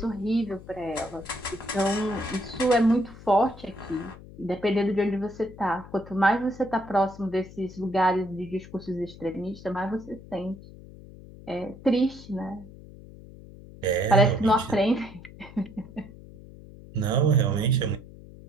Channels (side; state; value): left; noise; hum, 18 dB below the sound